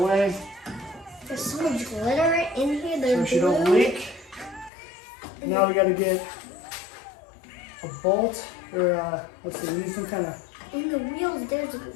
There's so much glitter in here. So she don't leak. Now we got to get a bolt, or let's see, we need some kind of. In the wheels, there's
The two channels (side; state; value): right; drops out; at 4.7 s